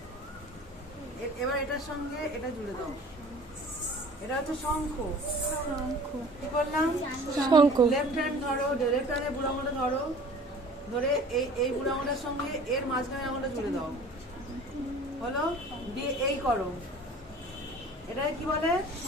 এবার এটার সঙ্গে এটা জুড়ে দাও। এটা হচ্ছে শঙ্খ। কি বললাম? শঙ্খ। লেফট হ্যান্ড ধরো, লেফট হ্যান্ডে বুড়ো আঙুলটা ধরো, ধরে এই বুড়ো আঙুলের সঙ্গে এর মাঝখানে আঙুলটা জুড়ে দাও। হলো? দিয়ে এই করো। এটা কি বলে?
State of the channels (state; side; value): normal; both; correlation 0.45